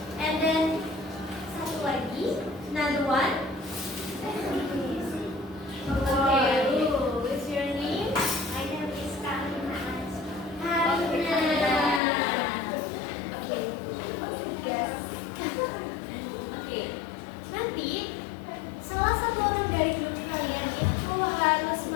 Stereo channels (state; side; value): drops out; right; at 12.0 s